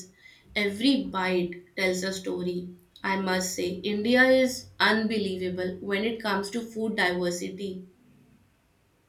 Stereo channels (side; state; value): both; identical; correlation 1.00